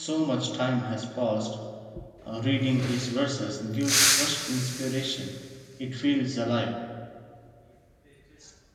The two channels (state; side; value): identical; both; correlation 1.00